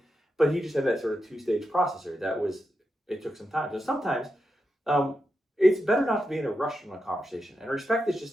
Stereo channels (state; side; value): normal; both; correlation 0.87